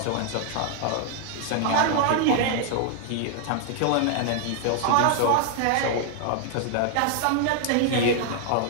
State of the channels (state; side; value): different; both; correlation 0.00